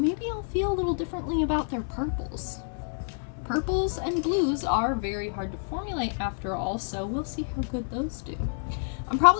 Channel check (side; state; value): right; silent; digital silence